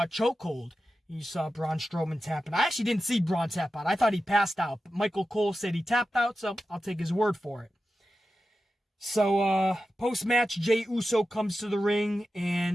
a chokehold. You saw Braun Strowman tapping. I actually didn't see Braun tap out. I thought he passed out. But Michael Cole said he tapped out, so I'll take his word for it. So, post-match, Jey Uso comes to the ring,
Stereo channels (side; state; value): both; normal; correlation 0.92